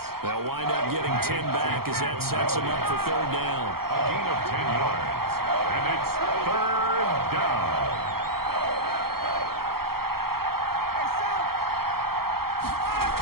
They'll wind up getting 10 back as that sets them up for third down. A gain of 10 yards. And it's third down.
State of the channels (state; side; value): late; left; 0.94 ms